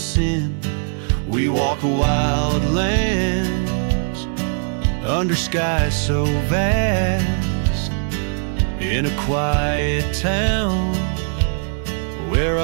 We walk wild lands under skies so vast, in a quiet town where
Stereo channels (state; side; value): silent; left; 55 dB below the other